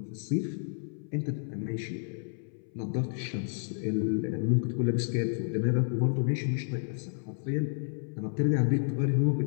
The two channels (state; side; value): silent; right; 57 dB below the other